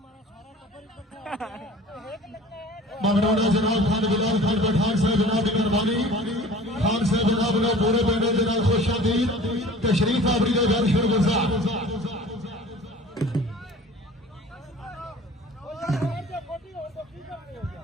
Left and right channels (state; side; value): normal; both; correlation 0.44